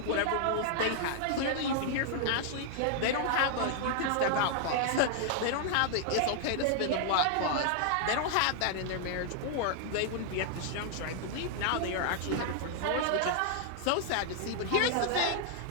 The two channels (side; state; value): both; different; correlation 0.00